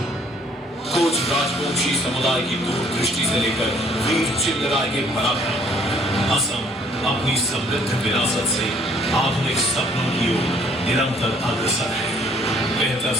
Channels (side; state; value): both; normal; correlation 0.61